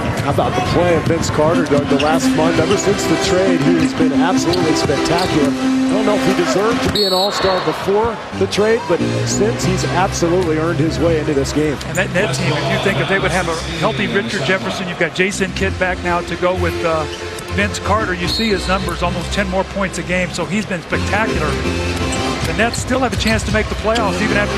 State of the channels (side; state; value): both; identical; correlation 1.00